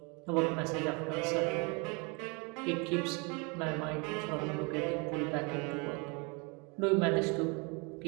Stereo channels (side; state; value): left; quieter; 30.8 dB